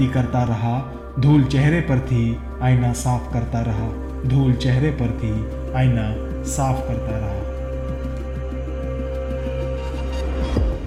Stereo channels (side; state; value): both; identical; correlation 1.00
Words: करता रहा, धूल चेहरे पर थी, आईना साफ करता रहा, धूल चेहरे पर थी, आईना साफ करता रहा।